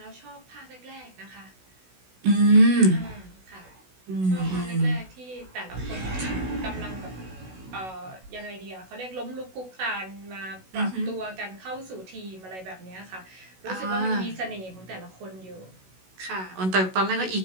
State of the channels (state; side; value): late; left; 16 ms